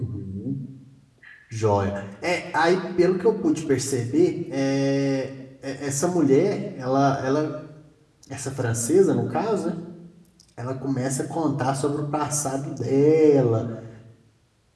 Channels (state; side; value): identical; both; correlation 1.00